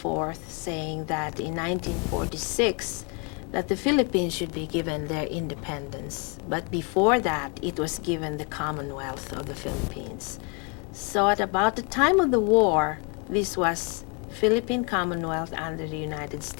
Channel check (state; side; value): quieter; right; 31.0 dB